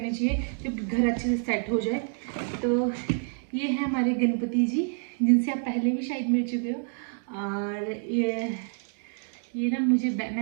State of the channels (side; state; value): left; silent; 59 dB below the other